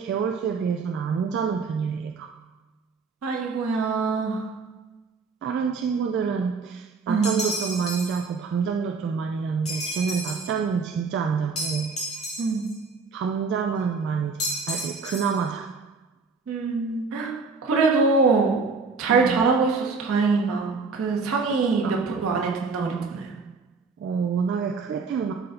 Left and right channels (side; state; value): left; quieter; 4.5 dB